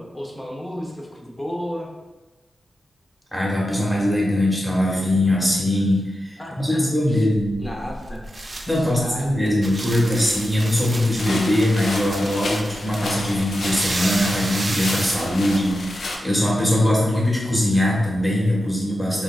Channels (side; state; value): both; normal; correlation 0.90